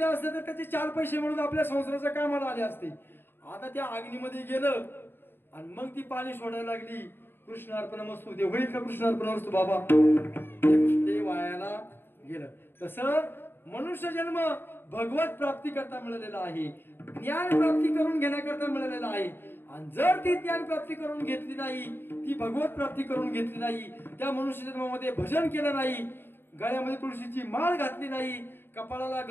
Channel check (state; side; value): late; right; 0.10 ms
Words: असतं तर त्याचे 4 पैसे म्हणून आपल्या संसाराच्या कामाला आले असते. आता त्या अग्नीमध्ये गेलं आणि मग ती पाणी सोडायला लागली. कृष्णार्पण मस्तू ते होईल का, कृष्णार्पण मस्तू बाबा, ते वायाला गेलं. तसं मनुष्य जन्म भगवत प्राप्ती करता मिळालेला आहे, ज्ञान प्राप्ती करून घेण्याकरता मिळालेला आहे. आणि जर ती ज्ञान प्राप्ती करून घेतली नाही, ती भगवत प्राप्ती करून घेतली नाही, त्या मनुष्य जन्मामध्ये भजन केलं नाही, गळ्यामध्ये तुळशीची माळ घातली नाही, कपाळाला